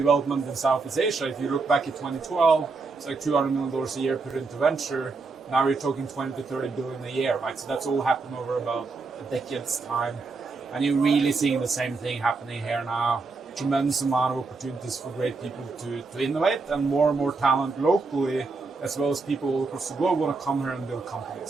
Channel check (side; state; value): left; quieter; 4.1 dB